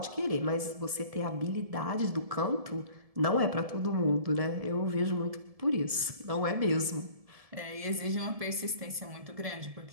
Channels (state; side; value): late; left; 1.7 ms